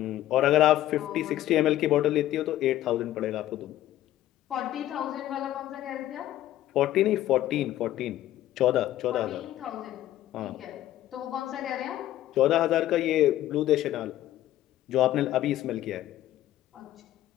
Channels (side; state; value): right; quieter; 13.7 dB